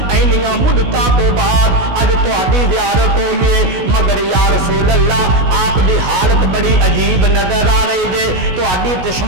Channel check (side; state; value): left; late; 16 ms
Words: اینیاں مدتاں تو بعد اج تہاڈی زیارت ہوئی ہے، مگر یا رسول اللہ آپ دی حالت بڑی عجیب نظر آ رہی ہے، تہاڈی